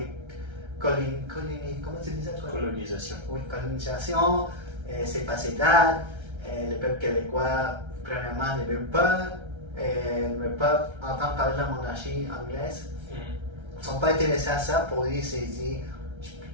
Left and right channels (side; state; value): left; late; 1.3 ms